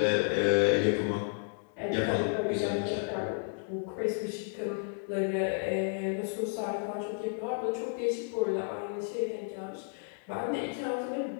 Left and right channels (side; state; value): right; silent; 56 dB below the other